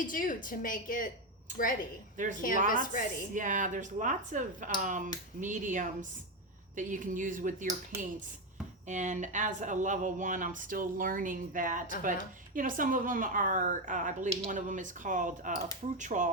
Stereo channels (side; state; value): both; normal; correlation 0.09